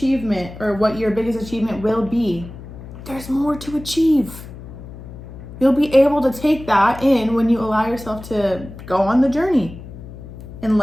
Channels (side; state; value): left; noise; hum, 14 dB below the sound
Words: or what your biggest achievement will be, there's more to achieve. You'll be able to take that in when you allow yourself to go on the journey. and